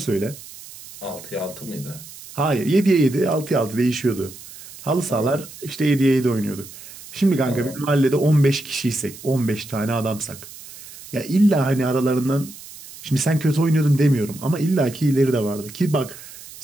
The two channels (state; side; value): noise; right; hiss, 17 dB below the sound